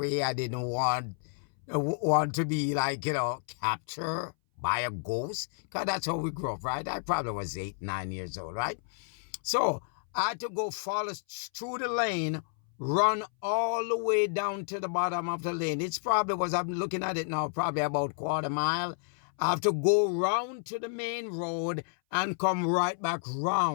I didn't want to be captured by a ghost, because that's how we grew up, right? I probably was 8, 9 years old, right? So I had to go follow through the lane, run all the way down to the bottom of the lane. It's probably was, I'm looking at it now, probably about quarter mile. I have to go round to the main road and come right back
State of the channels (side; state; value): right; silent; 57 dB below the other